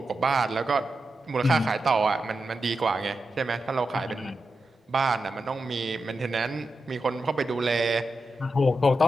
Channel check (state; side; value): normal; both; correlation 0.89